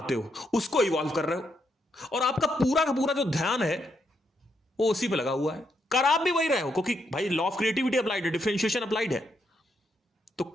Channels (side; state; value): both; normal; correlation 0.79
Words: हो, उसको इवॉल्व कर रहे हो, और आपका पूरा का पूरा जो ध्यान है वो उसी पे लगा हुआ है। कर आप भी वही रहे हो, क्योंकि भाई लॉ ऑफ क्रिएटिविटी अप्लाइड है, डिफरेंशिएशन अप्लाइड है। तो